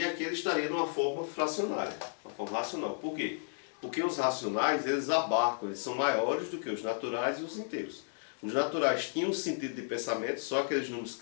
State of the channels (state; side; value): silent; right; digital silence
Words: aqui ele estaria numa forma fracionária, uma forma racional. Por quê? Porque os racionais, eles abarcam, eles são maiores do que os naturais e os inteiros. Os naturais tinham um sentido de pensamento, só aqueles números